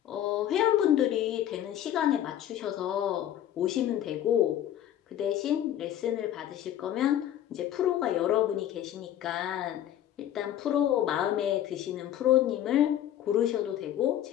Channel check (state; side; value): quieter; right; 11.4 dB